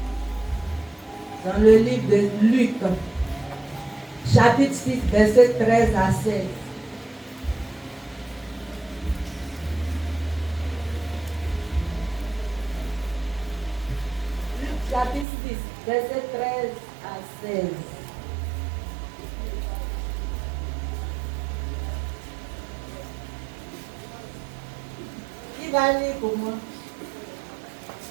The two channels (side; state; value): left; drops out; at 15.2 s